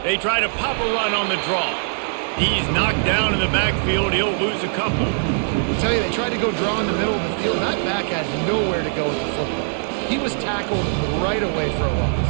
They try to pop a run on the draw. He's knocked down in the backfield. He'll lose a couple. I tell you, they tried to go draw in the middle of the field. That back had nowhere to go with the football. He was tackled right away for a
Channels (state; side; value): silent; left; 65 dB below the other